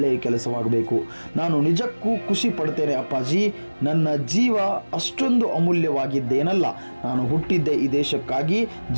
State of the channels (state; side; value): inverted; both; correlation -1.00